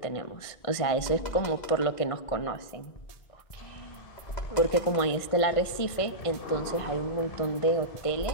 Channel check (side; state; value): right; late; 1.6 ms